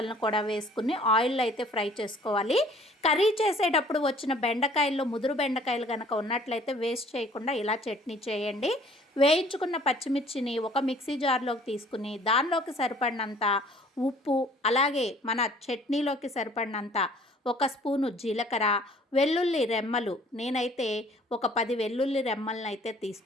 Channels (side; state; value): both; normal; correlation 0.55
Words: కూడా వేసుకుని ఆయిల్లో అయితే ఫ్రై చేసుకోవాలి. కర్రీ చేసేటప్పుడు వచ్చిన బెండకాయల్లో ముదురు బెండకాయలు కనుక ఉన్నట్లయితే వేస్ట్ చేయకుండా ఇలా చట్నీ చేయండి. వేయించుకున్న పచ్చిమిర్చిని ఒక మిక్సీ జార్లోకి తీసుకుని దానిలోకి సరిపడినంత ఉప్పు, అలాగే మన చట్నీలోకి సరిపడినంత ఒక స్పూను జీలకర్ర, వెల్లుల్లి రెమ్మలు, నేనైతే ఒక 10 వెల్లుల్లి రెమ్మలను అయితే